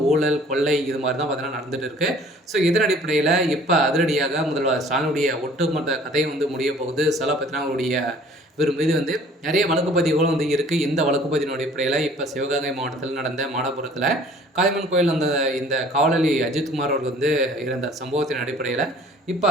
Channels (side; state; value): both; normal; correlation 0.52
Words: ஊழல், கொள்ளை இது மாதிரி தான் பார்த்தீங்கன்னா நடந்துட்டு இருக்கு. இதன் அடிப்படையில் இப்போ அதிரடியாக முதல்வர் ஸ்டாலினுடைய ஒட்டுமொத்த கதை முடிய போகுது. பார்த்தீங்கன்னா அவருடைய இவர் மீது நிறைய வழக்கு பதிவுகளும் இருக்குது. இந்த வழக்கு பதிவின் அடிப்படையில் இப்போ சிவகங்கை மாவட்டத்தில் நடந்த மாடபுரத்தில் காளியம்மன் கோயில் இந்த காவலாளி அஜித்குமார் அவர்கள் இருந்த சம்பவத்தின் அடிப்படையில் இப்போ